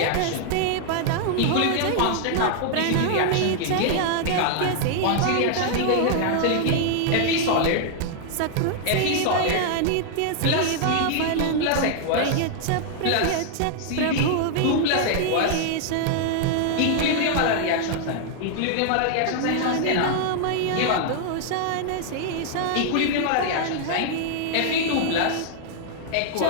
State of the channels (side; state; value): both; different; correlation 0.00